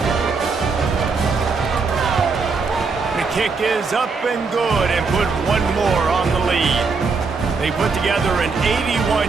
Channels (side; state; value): left; quieter; 4.6 dB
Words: The kick is up and good and put one more on the lead. They put together an